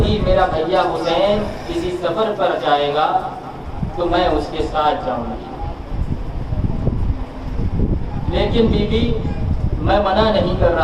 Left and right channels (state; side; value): identical; both; correlation 1.00